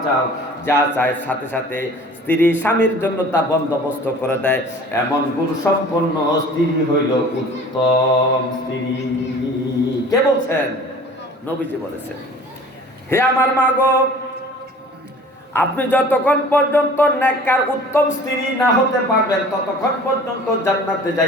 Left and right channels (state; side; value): normal; both; correlation 0.46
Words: চাও, যা চায় সাথে সাথে স্ত্রী স্বামীর জন্য তা বন্দোবস্ত করে দেয়, এমন গুণ সম্পন্ন স্ত্রী হইল উত্তম স্ত্রী। কে বলছেন? নবীজি বলেছেন। হে আমার মা গো, আপনি যতক্ষণ পর্যন্ত নেককার উত্তম স্ত্রী না হতে পারবেন ততক্ষণ পর্যন্ত জান্নাতে